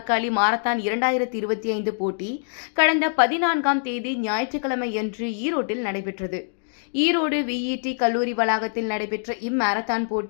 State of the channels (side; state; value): right; silent; digital silence